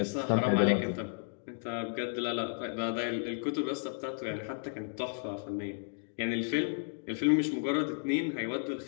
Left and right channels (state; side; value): silent; right; digital silence